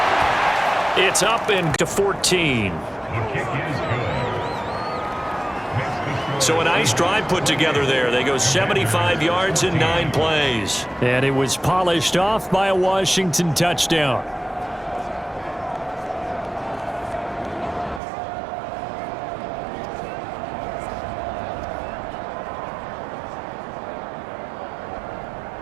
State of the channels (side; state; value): left; drops out; at 18.0 s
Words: It's up and to 14. So a nice drive put together there. They go 75 yards in 9 plays. And it was polished off by a Washington touchdown.